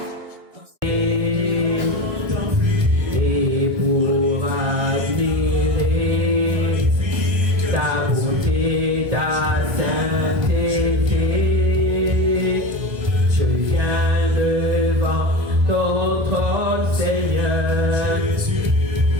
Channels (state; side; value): late; left; 1.3 ms